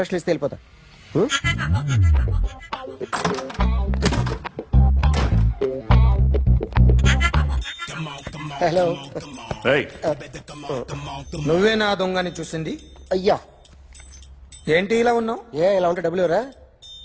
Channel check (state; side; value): identical; both; correlation 1.00